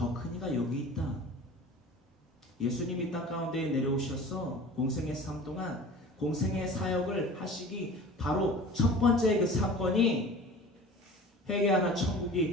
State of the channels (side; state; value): both; normal; correlation 0.40